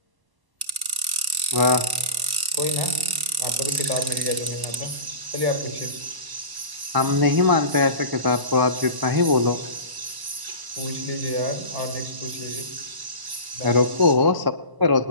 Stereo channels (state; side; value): late; left; 1.0 ms